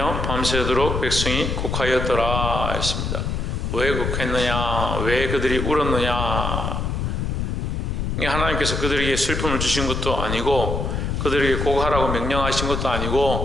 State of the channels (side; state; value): left; noise; rumble, 1 dB below the sound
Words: 밤새도록 백성이 곡하였더라 했습니다. 왜 곡했느냐? 왜 그들이 울었느냐? 하나님께서 그들에게 슬픔을 주신 것도 아니고 그들에게 곡하라고 명령하신 것도